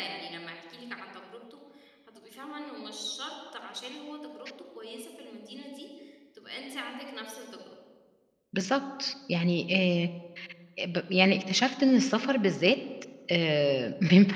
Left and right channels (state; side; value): identical; both; correlation 1.00